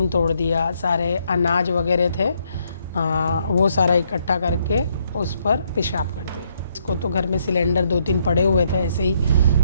तोड़ दिया। सारे अनाज वगैरह थे वो सारा इकट्ठा करके उस पर पेशाब कर दिए। इसको तो घर में सिलेंडर 2-3 पड़े हुए थे ऐसे ही,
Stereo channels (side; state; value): both; inverted; correlation -0.72